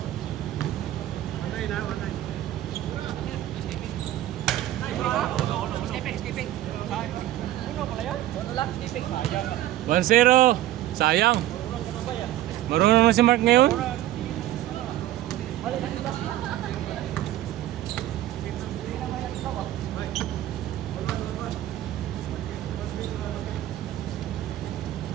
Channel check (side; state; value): left; quieter; 13.8 dB